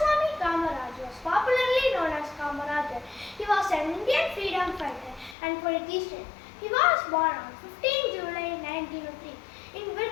Kamaraj was popularly known as Kamarajar. He was an Indian freedom fighter and politician. He was born on 15 July 1903 in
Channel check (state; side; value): drops out; right; at 5.4 s